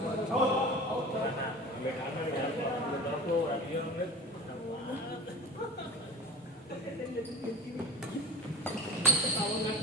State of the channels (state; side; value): normal; both; correlation 0.34